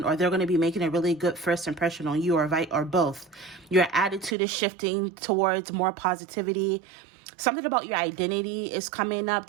or they're going to be making a really good first impression on you, or both. Your attitude is shifting towards more positivity. Something about your identity is coming up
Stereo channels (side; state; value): left; drops out; at 4.4 s